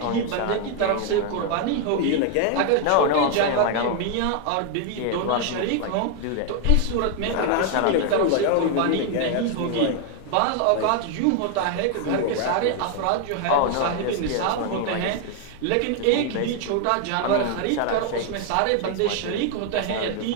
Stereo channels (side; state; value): both; different; correlation 0.00